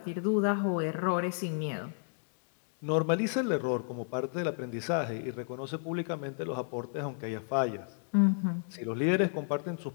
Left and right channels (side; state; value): right; silent; digital silence